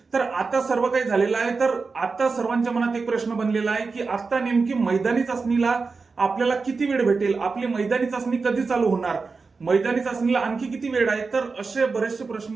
तर आता सर्व काही झालेलं आहे. तर आता सर्वांच्या मनात एक प्रश्न बनलेला आहे की आता नेमकी मैदानी चाचणीला आपल्याला किती वेळ भेटेल, आपली मैदानी चाचणी कधी चालू होणार, मैदानी चाचणीला आणखी किती वेळ आहे. तर असे बरेचसे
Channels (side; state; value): left; quieter; 4.4 dB